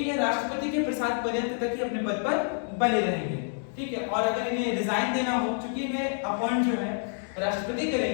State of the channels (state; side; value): silent; right; 59 dB below the other